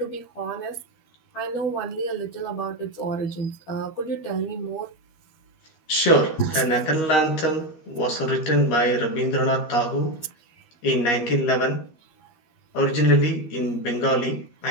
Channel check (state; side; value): late; right; 13 ms